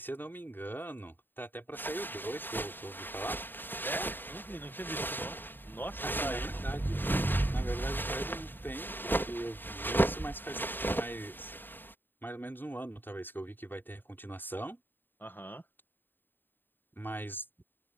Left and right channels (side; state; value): right; late; 0.094 ms